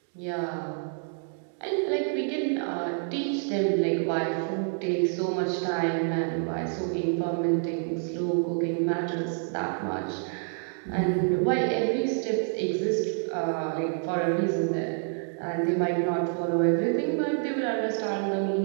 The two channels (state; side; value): silent; left; 59 dB below the other